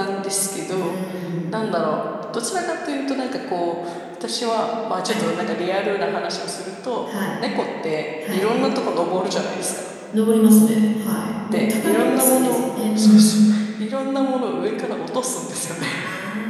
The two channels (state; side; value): identical; both; correlation 1.00